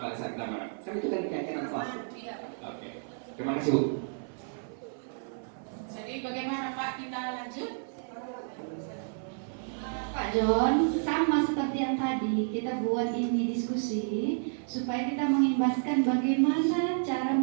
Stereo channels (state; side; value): silent; left; 57 dB below the other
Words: pada saat kita mana. Kan itu kan keyakinan kelas. Oke. Terima kasih Bu. Jadi bagaimana Pak, kita lanjut? Pak John, sama seperti yang tadi kita buat ini diskusi supaya kita mengimbaskan bagaimana cara